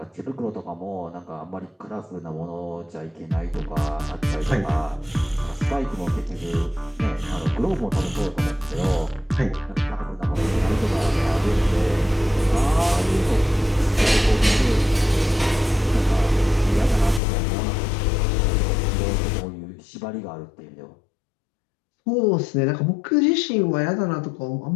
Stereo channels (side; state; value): right; drops out; at 17.2 s